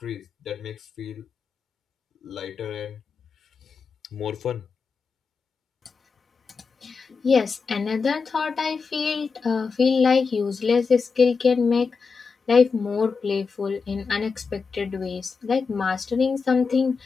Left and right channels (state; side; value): quieter; right; 5.0 dB